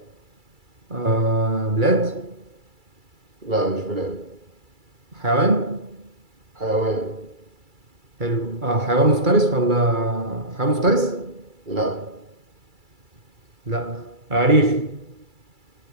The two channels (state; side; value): late; left; 2.3 ms